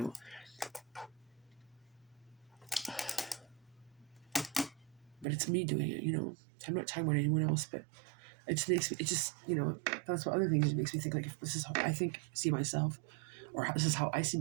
but it's me doing it. I'm not talking about anyone else, but it just makes me. It just that's what other things it makes me think, like, if this is how I see myself, or this is how I see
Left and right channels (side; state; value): left; drops out; at 5.2 s